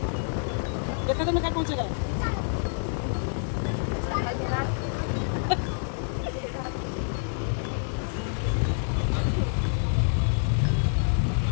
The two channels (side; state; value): right; silent; 60 dB below the other